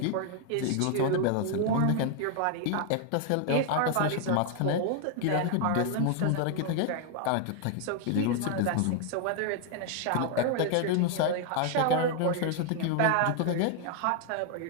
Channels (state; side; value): different; both; correlation 0.00